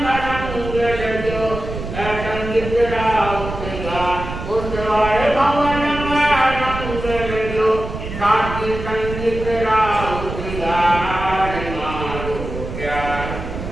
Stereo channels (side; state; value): right; noise; rumble, 8 dB below the sound